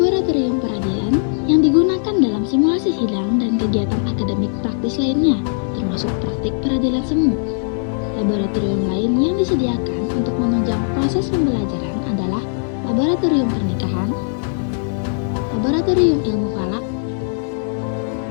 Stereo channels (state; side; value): silent; right; digital silence